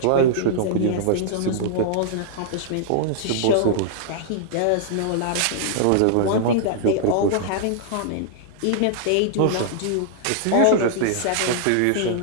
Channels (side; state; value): both; different; correlation -0.01